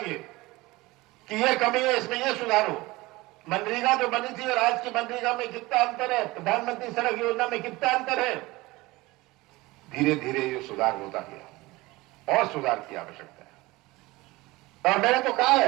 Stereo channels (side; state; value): left; quieter; 20.9 dB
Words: कि ये कमी है, इसमें ये सुधारो। मनरेगा जो बनी थी और आज की मनरेगा में कितना अंतर है, प्रधानमंत्री सड़क योजना में कितना अंतर है। धीरे धीरे ये सुधार होता गया और सुधार की आवश्यकता है। और मैंने तो कहा